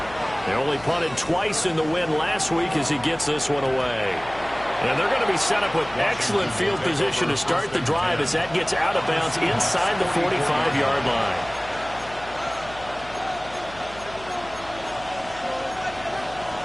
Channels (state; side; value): noise; left; hum, 19 dB below the sound